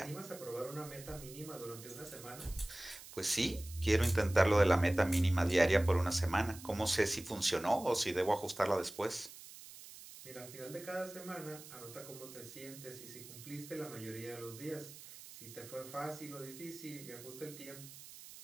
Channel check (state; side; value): noise; right; hiss, 16 dB below the sound